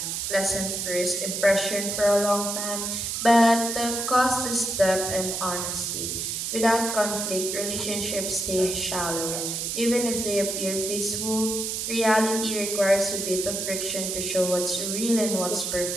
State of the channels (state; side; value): noise; right; hiss, 2 dB below the sound